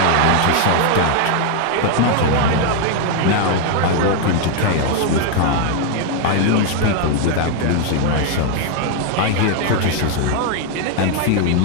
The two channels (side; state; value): both; different; correlation 0.01